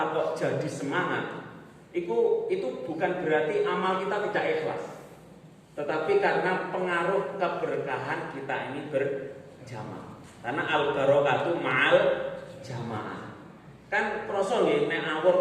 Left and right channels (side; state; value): both; identical; correlation 1.00